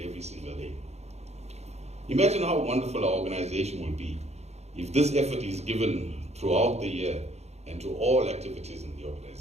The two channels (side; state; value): left; late; 0.31 ms